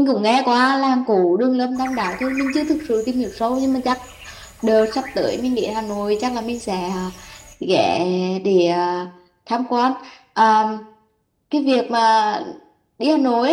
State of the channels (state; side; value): identical; both; correlation 1.00